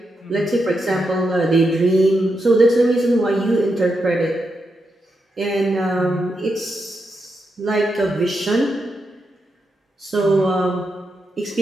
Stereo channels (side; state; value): both; normal; correlation 0.85